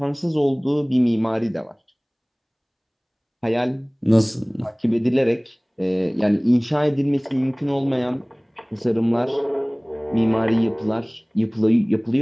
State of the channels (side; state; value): both; identical; correlation 1.00